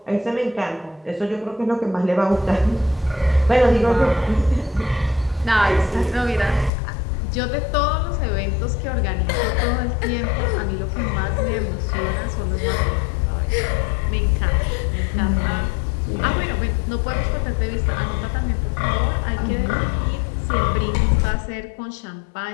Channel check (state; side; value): drops out; right; at 6.7 s